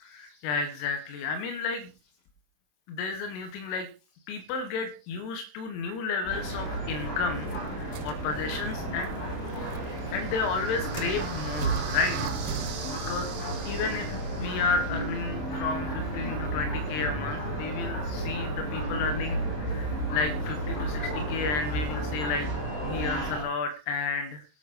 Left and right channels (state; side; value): late; right; 27 ms